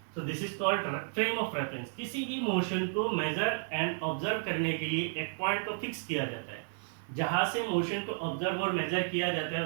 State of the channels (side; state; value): left; silent; 56 dB below the other